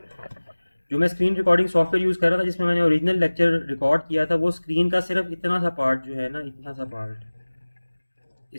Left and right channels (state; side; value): inverted; both; correlation -1.00